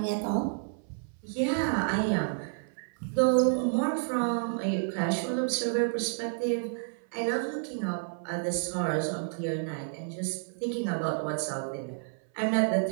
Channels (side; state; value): left; silent; 58 dB below the other